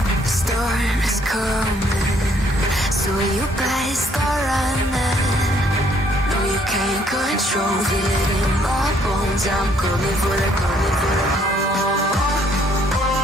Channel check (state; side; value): normal; both; correlation 0.66